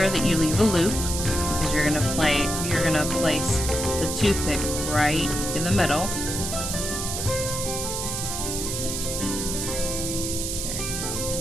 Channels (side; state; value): right; noise; hiss, 3 dB below the sound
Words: that you leave a loop because you're gonna place the toothpick right in the middle. There you go.